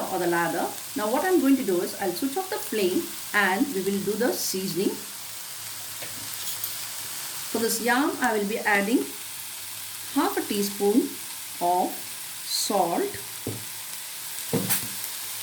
or the lather. Now what I'm going to do is I'll switch off the flame and we will do the seasoning. For this yam I will be adding half a teaspoon of salt,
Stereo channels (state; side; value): identical; both; correlation 1.00